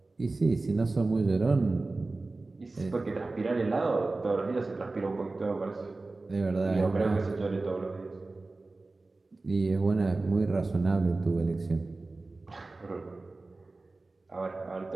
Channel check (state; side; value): quieter; left; 3.3 dB